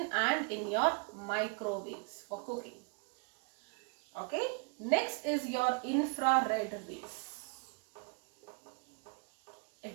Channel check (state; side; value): quieter; left; 37.0 dB